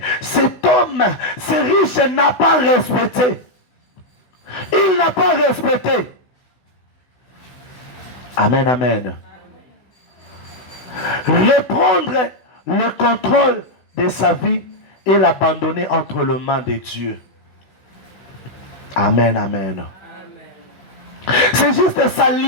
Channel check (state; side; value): late; right; 16 ms